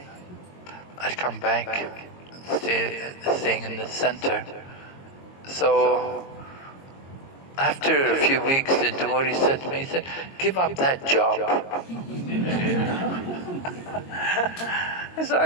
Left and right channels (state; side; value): late; right; 22 ms